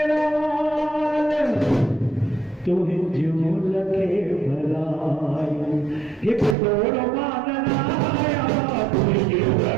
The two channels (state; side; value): drops out; left; at 6.6 s